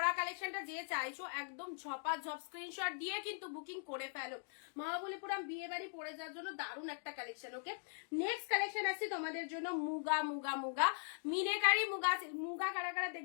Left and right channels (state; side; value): silent; right; digital silence